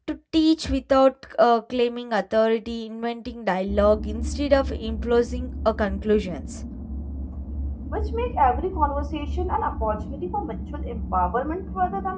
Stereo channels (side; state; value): both; identical; correlation 1.00